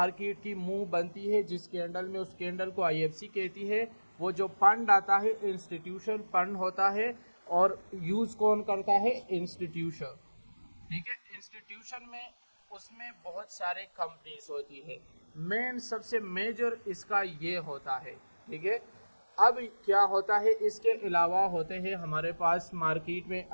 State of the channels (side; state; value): both; inverted; correlation -1.00